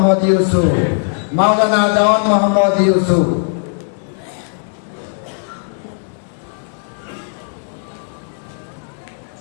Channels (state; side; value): silent; right; 68 dB below the other